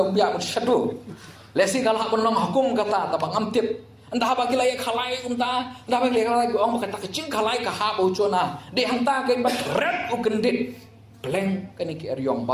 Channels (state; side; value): identical; both; correlation 1.00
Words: biar satu. Lesi kalau pun nong hukum kata tapi ngamtip. Entah bagi lagi kalai entah bagi lagi orang kata kecing kalai kahap ucona. Di hantar ke bat red ukendit. Peleng kini ke eriong